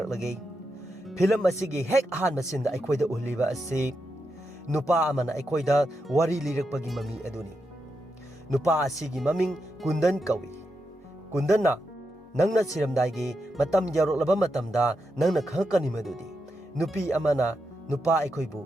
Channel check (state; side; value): normal; both; correlation 0.86